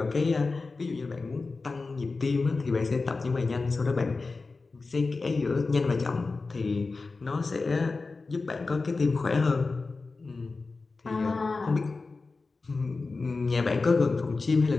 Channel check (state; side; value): quieter; right; 3.9 dB